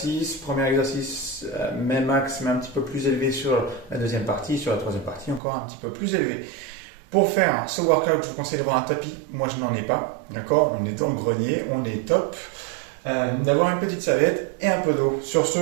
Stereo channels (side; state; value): left; drops out; at 5.4 s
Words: même axe, mais un petit peu plus élevé sur la deuxième partie, sur la troisième partie, encore un petit peu plus élevé. Pour faire ce workout, je vous conseille d'avoir un tapis. Moi, je n'en ai pas, d'accord. On est dans le grenier, on est top. D'avoir une petite serviette et un peu d'eau. Sur ce,